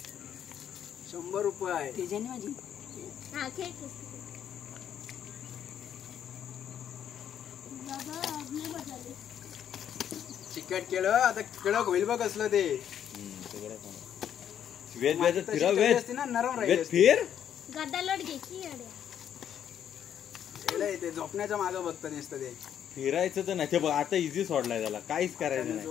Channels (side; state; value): right; quieter; 9.5 dB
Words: 100 रुपये त्याच्याने माझी हा खेळ चिकट केलं आता कडक होईल बघ असलं ते वेद वेद फिरा वेद असते ना नरम वेद राहील फिर गदा लोट घ्यायची ते झोपण्याच्या मागं बघतं नुसतं ते फिरायचं तर नाही ते बघ आता इझी सोडलाय त्याला काहीच करायचं नाही